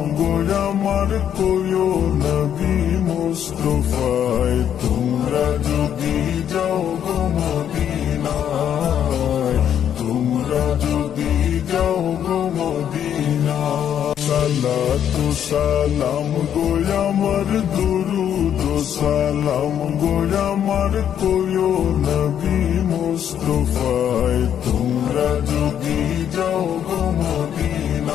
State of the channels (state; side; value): quieter; right; 9.4 dB